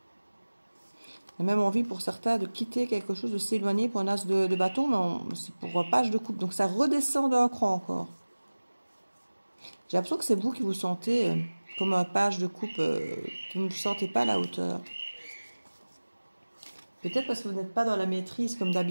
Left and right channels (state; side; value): inverted; both; correlation -1.00